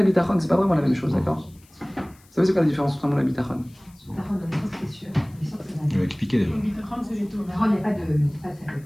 Bitachon, c'est pas vraiment la même chose, d'accord? Vous savez c'est quoi la différence entre l'Aïmouna Bitachon? Je vais expliquer déjà. Le bitachon, c'est les taux. Il n'y a pas de.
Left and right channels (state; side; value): noise; left; hiss, 29 dB below the sound